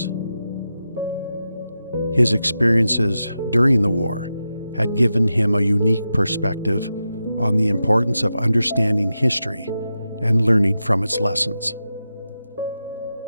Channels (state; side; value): inverted; both; correlation -0.90